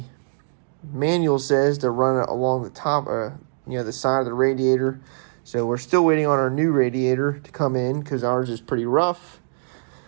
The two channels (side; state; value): left; silent; digital silence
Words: manual says to run it along the top, the side of the radiator. So we're still waiting on our new radiator to come in because ours is pretty rough.